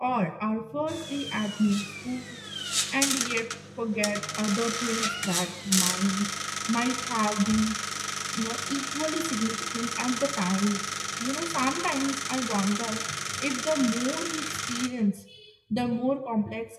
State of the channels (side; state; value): both; identical; correlation 1.00